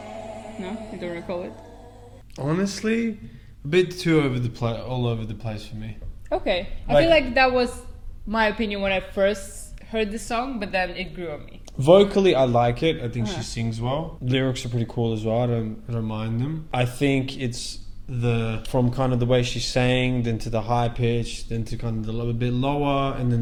No, you don't recall it? Honestly, a bit too all over the place for me. Okay, I Like- feel like that was my opinion when I first heard the song, but then it grew on me. Vocally, I like it. I think Uh-huh. she sings well. Lyrics are pretty cool as well. I don't mind them. I think it's from kind of the way she sang, then to the high pitch, then to kind of the little bit lower, and then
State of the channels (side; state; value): both; identical; correlation 1.00